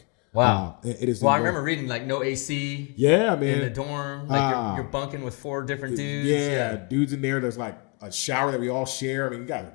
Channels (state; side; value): quieter; right; 33.6 dB